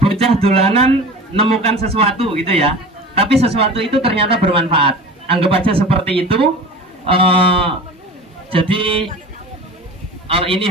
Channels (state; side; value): normal; both; correlation 0.36